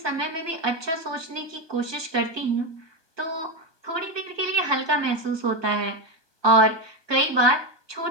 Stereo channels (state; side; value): late; left; 1.2 ms